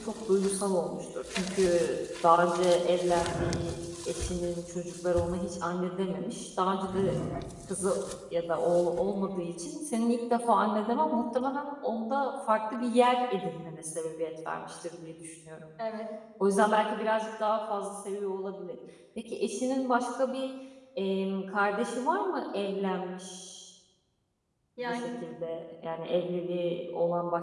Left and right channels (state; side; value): identical; both; correlation 1.00